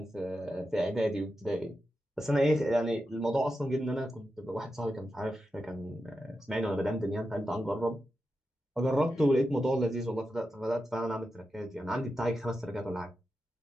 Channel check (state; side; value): normal; both; correlation 0.89